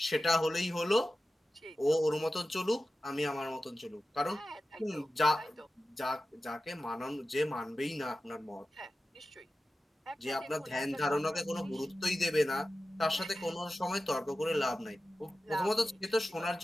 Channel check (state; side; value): normal; both; correlation 0.94